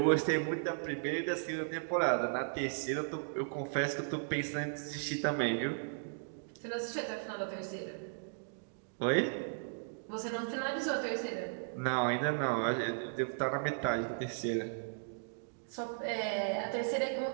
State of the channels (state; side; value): silent; left; digital silence